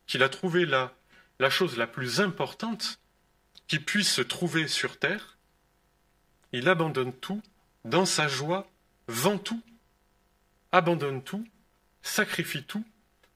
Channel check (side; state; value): both; identical; correlation 1.00